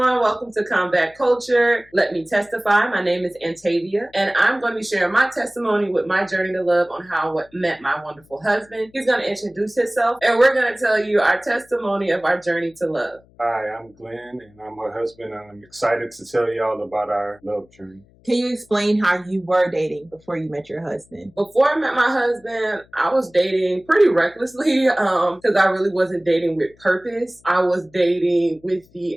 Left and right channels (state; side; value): noise; left; hum, 30 dB below the sound